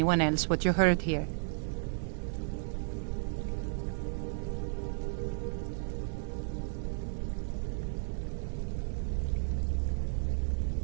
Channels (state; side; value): silent; left; 56 dB below the other